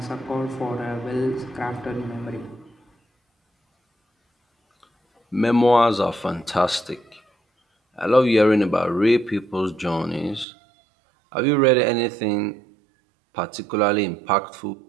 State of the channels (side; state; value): left; drops out; at 10.5 s